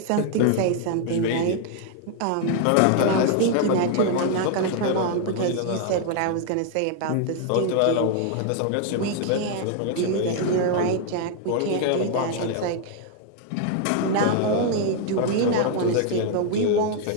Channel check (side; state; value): both; different; correlation 0.00